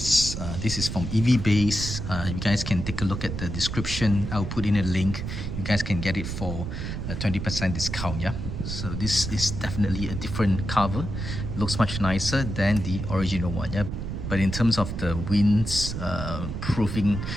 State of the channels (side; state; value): right; noise; rumble, 5 dB below the sound